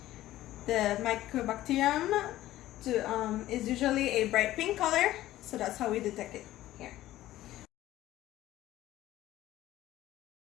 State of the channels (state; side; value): quieter; right; 14.8 dB